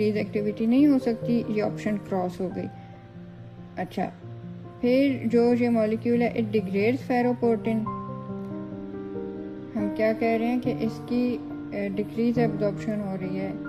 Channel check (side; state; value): both; identical; correlation 1.00